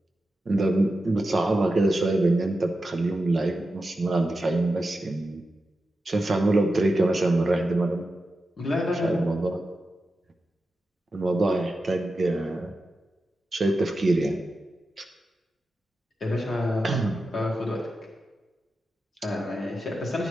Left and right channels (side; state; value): both; normal; correlation 0.91